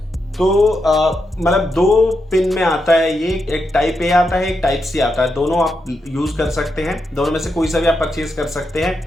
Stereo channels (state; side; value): normal; both; correlation 0.84